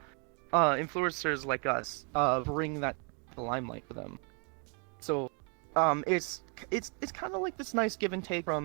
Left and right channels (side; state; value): left; quieter; 37.3 dB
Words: influencers like us bring that to the limelight for them. So it's kind of like this nice give and take